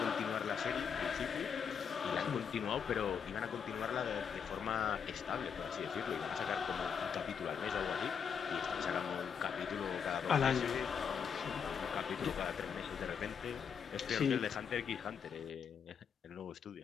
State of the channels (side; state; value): right; quieter; 7.0 dB